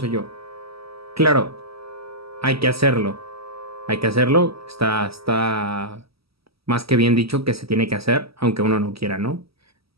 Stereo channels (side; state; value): left; late; 0.76 ms